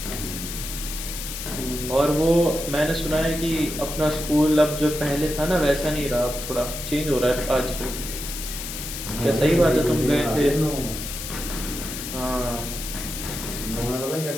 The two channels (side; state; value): left; noise; hiss, 7 dB below the sound